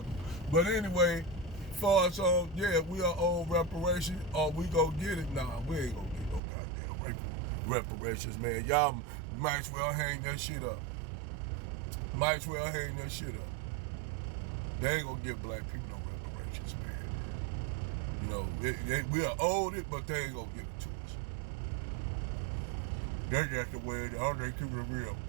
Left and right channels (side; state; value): left; drops out; at 6.4 s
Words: But anyway, far as we are owed reparations, or we go get it. Nah, we ain't gonna get no goddamn reparations, man. Y'all might as well hang that shit up. Might as well hang that shit up. They ain't gonna give black people no reparations, man. You know, we are owed it, but they ain't gonna give it to us. That's just the way it is. They keep it real.